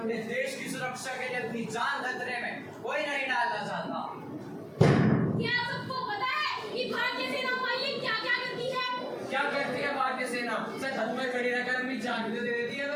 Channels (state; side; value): identical; both; correlation 1.00